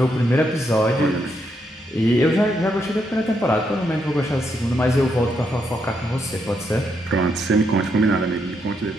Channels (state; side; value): normal; both; correlation 0.79